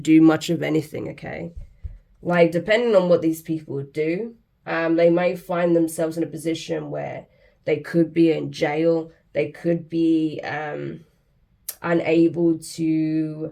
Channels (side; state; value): both; identical; correlation 1.00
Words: much of anything, okay? Like, depending on what these people do, they may find themselves in a position where they could be in jail, they could be unable to,